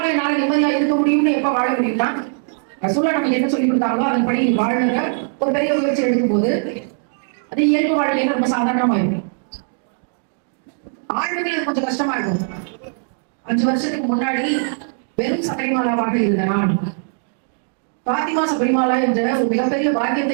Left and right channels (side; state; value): left; silent; 66 dB below the other